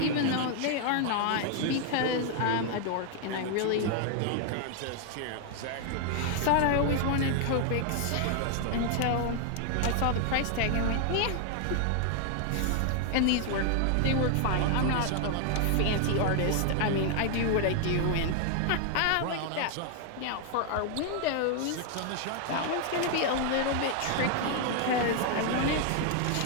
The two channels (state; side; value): different; both; correlation 0.00